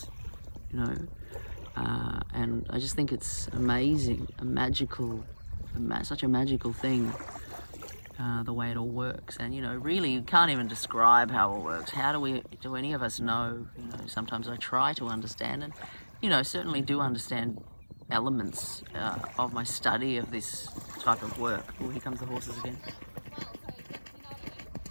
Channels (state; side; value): inverted; both; correlation -1.00